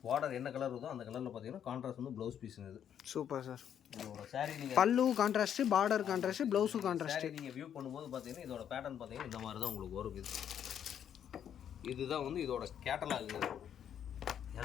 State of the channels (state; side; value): quieter; right; 9.2 dB